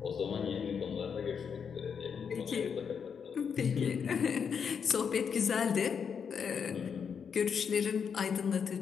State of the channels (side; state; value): right; quieter; 6.8 dB